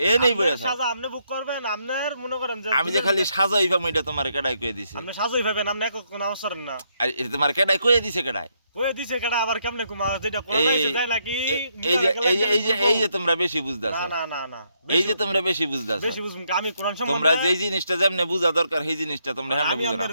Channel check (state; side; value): inverted; both; correlation -0.76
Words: এ নেই বইয়া থাও। সাজা আপনি বুক করবেন, আপনার মনে করেন যে আমি যে খালি সাজাই পাবো, এটা তোমার কেডাই কয়ে দিছে? আপনি সাজই ভাবেন, আপনি এক কোন নামাজ পড়েন না। আর এটা তোমার কেডাই কয়ে দিছে? কেডাই ওই দিছে কেডা আবার কেমনে কুমা যেটা কোরআন আইছে যায় নাকি? এই যে তোমরা বেশি বুঝদাছো, না না না না, এই যে তোমরা বেশি বুঝদাছো। বেশি বুঝুম আমি কোরআন সম্বন্ধে তোমরা যেই জিনিসটা যেমনে বুঝা দরকার সেই জিনিসটা তোমরা হেমনে আমি বুঝো না। আপনাদের